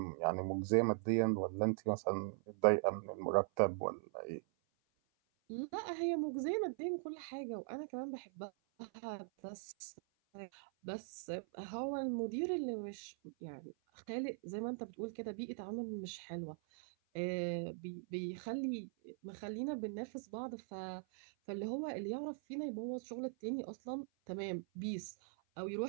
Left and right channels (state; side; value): silent; left; 50 dB below the other